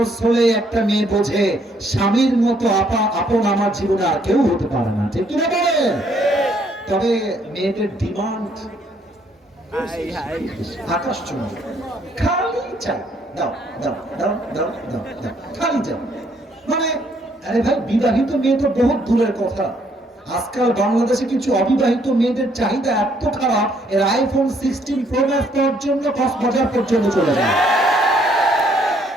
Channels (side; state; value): both; normal; correlation 0.67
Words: হলে একটা মেয়ে বোঝে স্বামীর মতো আপন আমার জীবনে আর কেউ হতে পারে না, ঠিক কিনা বলেন? তবে মেয়েদের ডিমান্ড আকাশ চুম্বি, খালি চাই, দাও দাও দাও দাও দাও দাও, খালি চাই। মানে আরে ভাই, বিবাহিত মেয়ে তো বহুত দূরের কথা, আজকাল বাংলাদেশে কিছু অবিবাহিত মেয়েদের চাহিদা এত খারাপ, এর আইফোন 16 প্রো ম্যাক্স পাওয়ার জন্য কক্সবাজার পর্যন্ত চলে যায়।